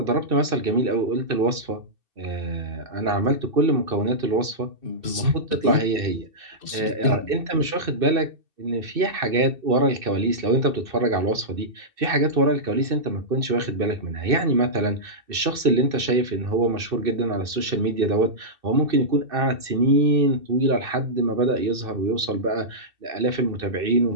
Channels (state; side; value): late; left; 2.7 ms